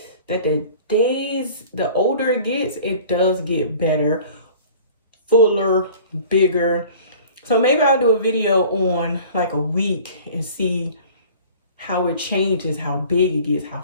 that the older it gets, it does get better, fuller, bigger. So maybe I'll do a video on like a week and see how it changes, how big it gets, how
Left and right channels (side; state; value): both; inverted; correlation -0.46